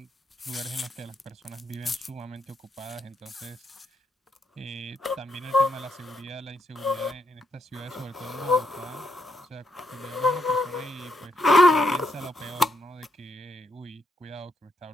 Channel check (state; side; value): normal; both; correlation 0.78